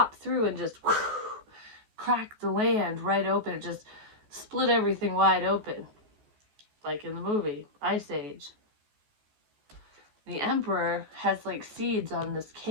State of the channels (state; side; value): late; left; 14 ms